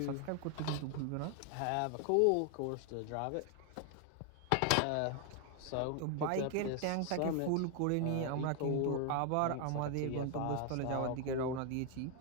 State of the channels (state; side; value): different; both; correlation 0.00